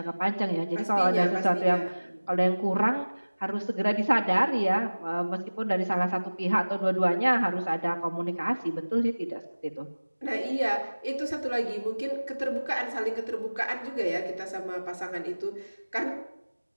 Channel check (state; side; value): inverted; both; correlation -1.00